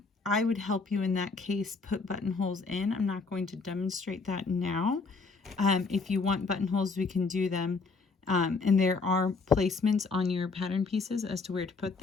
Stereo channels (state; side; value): quieter; right; 4.2 dB